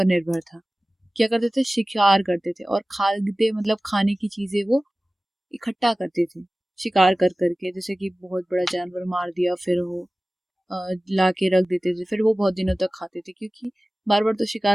निर्भर था। क्या करते थे, शिकार करते थे, और खाद्य मतलब खाने की चीजें वो इकट्ठा करते थे, शिकार कर करके, जैसे कि बहुत बड़ा जानवर मार दिया, फिर वो ला के रख देते थे, फिर वो बहुत दिनों तक खाते थे, क्योंकि बार बार तो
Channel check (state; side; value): normal; both; correlation 0.97